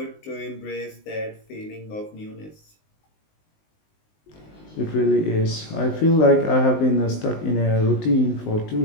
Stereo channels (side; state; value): right; late; 19 ms